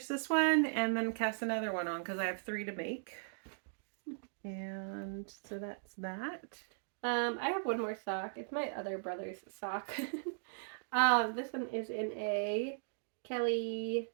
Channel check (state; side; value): silent; left; digital silence